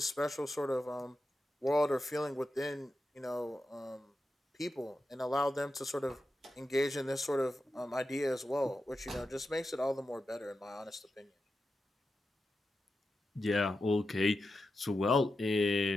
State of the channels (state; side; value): normal; both; correlation 0.90